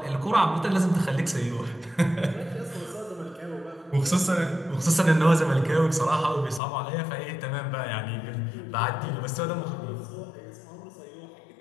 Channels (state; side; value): drops out; right; at 6.6 s